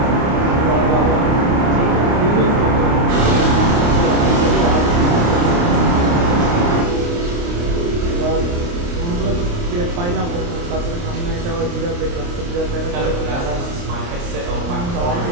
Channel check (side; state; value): left; late; 29 ms